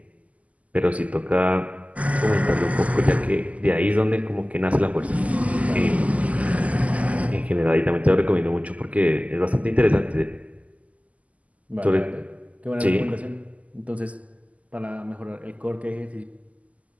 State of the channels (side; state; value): left; late; 0.070 ms